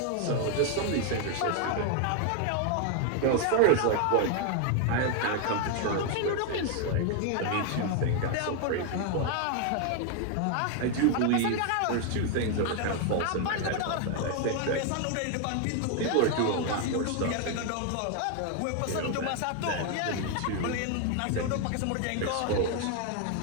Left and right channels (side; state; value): both; different; correlation 0.00